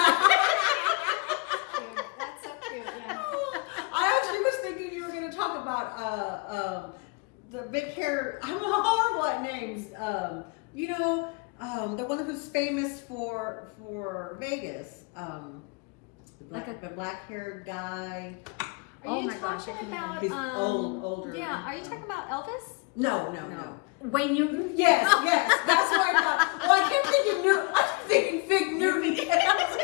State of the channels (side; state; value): right; quieter; 29.9 dB